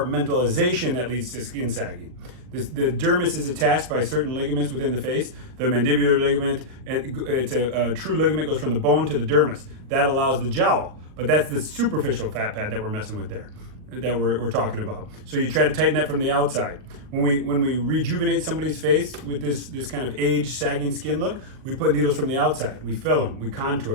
that leads to skin sagging. The dermis is attached by certain ligaments within the face. The mandibular ligament, it's a true ligament, goes from the bone to the dermis. That allows the jowl, but that's the superficial fat pad that we're messing with there, that we're talking about. So you try to tighten that from the outside. When we rejuvenate somebody's face with this kind of age sagging skin look, we put needles from the outside. We fill them, we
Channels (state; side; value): late; left; 39 ms